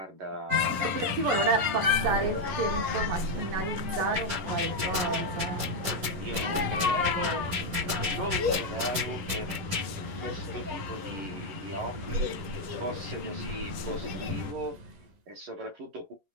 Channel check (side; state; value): left; late; 11 ms